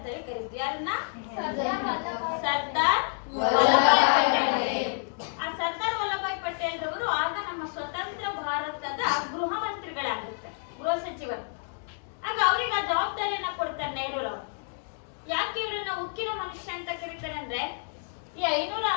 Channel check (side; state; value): right; silent; 56 dB below the other